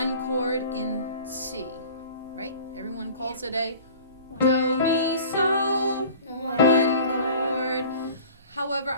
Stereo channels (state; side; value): inverted; both; correlation -0.43